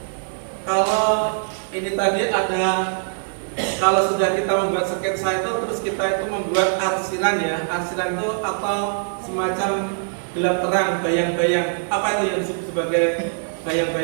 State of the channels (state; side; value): silent; left; digital silence